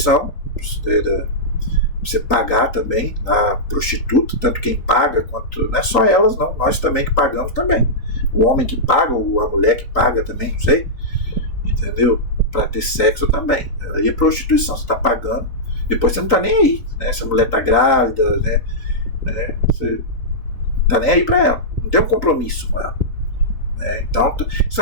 você pagar também na prostituta, tanto quem paga quanto. Não é só elas, não, nós também que pagamos também. O homem que paga, ou a mulher que paga também, não sei. Entendeu? Para ter sexo também. Aí é prostituição, você está pagando, depois você não está nem aí. Se a mulher está grávida, você não está nem aí para ela, não tem um compromisso com ela. Então, isso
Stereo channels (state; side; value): late; right; 3.9 ms